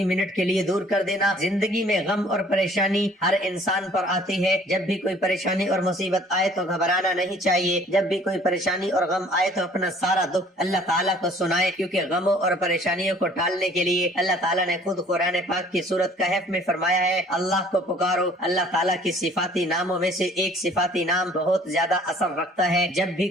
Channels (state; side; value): normal; both; correlation 0.54